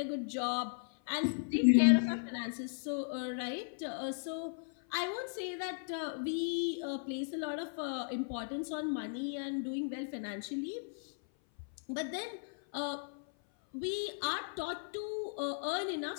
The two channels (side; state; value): right; silent; 54 dB below the other